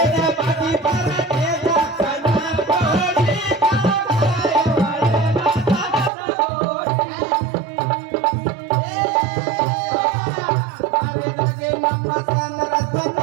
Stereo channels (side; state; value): left; drops out; at 6.1 s